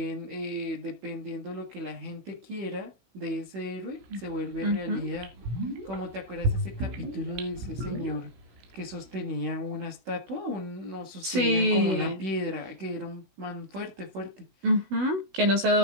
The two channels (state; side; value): late; left; 16 ms